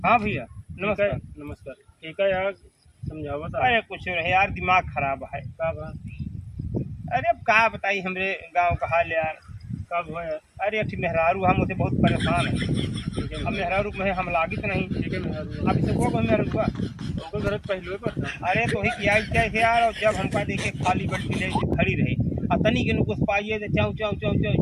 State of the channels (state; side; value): identical; both; correlation 1.00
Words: हाँ भैया नमस्कार। नमस्कार। ठीक है यार, समझावा था। अरे कुछ रहे यार, दिमाग खराब है। का बा? अरे अब का बताई हमरे गांव का हाल यार। कब हुआ यार? अरे अठी मेहरारू हम उसे बहुत परेशान है। ठीक है अब मेहरारू में हम लागित नहीं। ठीक है मेहरारू। अब इसे को मेहरारू हुआ। ओकर घर पहलुए पर था। अरे तो ही किया क्या है यार, और जब हमका देखे खाली बल्टी ले के खड़ी रही और तनी के नुकुस पाइए तो चाऊ चाऊ चाऊ